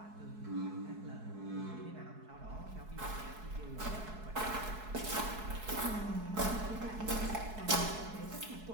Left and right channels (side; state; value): left; late; 4.7 ms